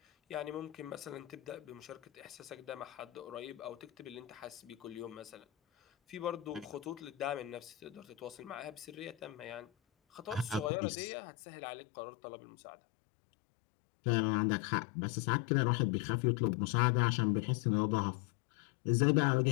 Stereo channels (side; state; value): right; drops out; at 10.7 s